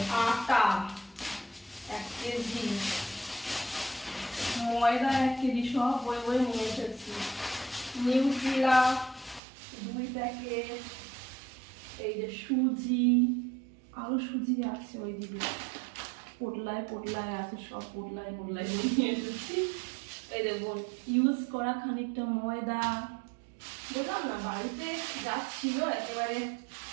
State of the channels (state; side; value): drops out; left; at 9.4 s